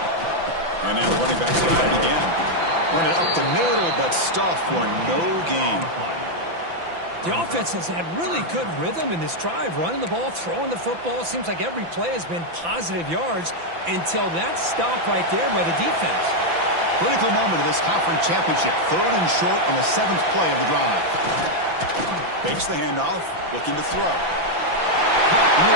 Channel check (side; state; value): left; late; 5.9 ms